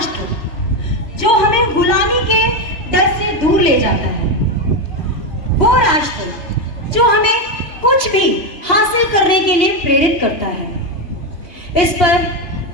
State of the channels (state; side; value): late; right; 2.9 ms